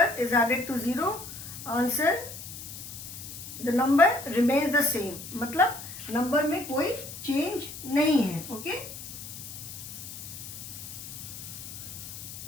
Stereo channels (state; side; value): noise; left; hiss, 11 dB below the sound